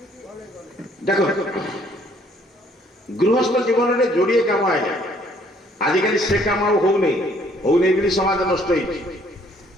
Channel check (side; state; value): both; normal; correlation 0.62